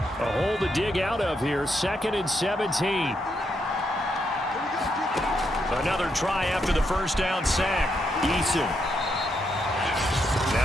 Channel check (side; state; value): both; normal; correlation 0.80